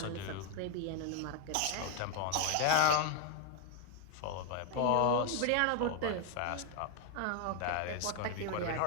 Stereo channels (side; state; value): both; different; correlation 0.00